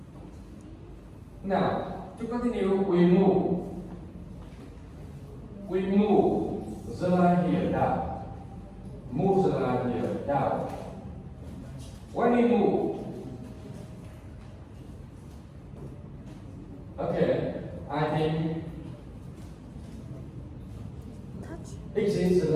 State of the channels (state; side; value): identical; both; correlation 1.00